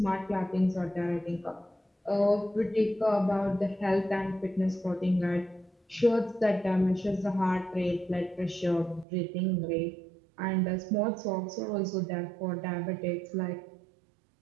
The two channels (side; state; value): left; drops out; at 9.1 s